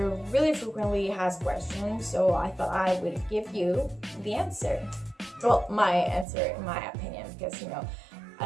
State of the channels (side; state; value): left; drops out; at 6.2 s